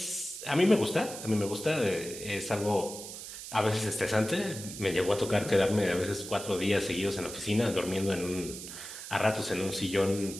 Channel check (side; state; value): right; noise; hiss, 10 dB below the sound